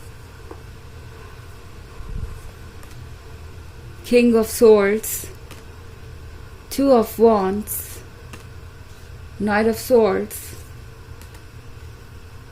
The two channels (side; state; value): both; identical; correlation 1.00